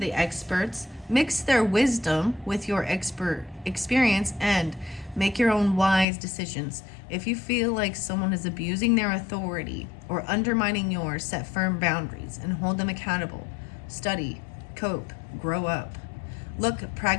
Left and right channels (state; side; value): drops out; right; at 6.1 s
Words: experts, mix their wisdom with your expert experience, and make your own wise decisions. If you feel like someone is abusing their authority or undermining yours, set firm boundaries and hold them accountable. Study, cope, grow up. Look